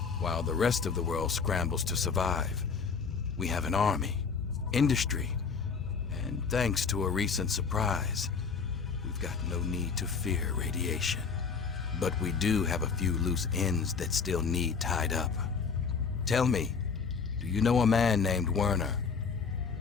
While the rest of the world scrambles to survive, we have an army, industry, and thanks to a recent surprise, we've got no need to fear radiation. But we do have a few loose ends that still need tied up. Tell me, do you know a man named Werner?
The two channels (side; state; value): right; quieter; 5.5 dB